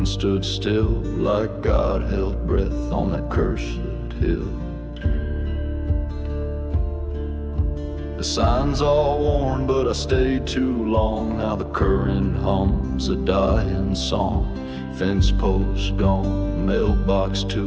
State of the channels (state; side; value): identical; both; correlation 1.00